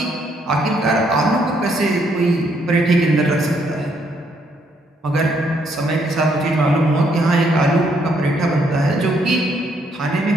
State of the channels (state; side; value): normal; both; correlation 0.72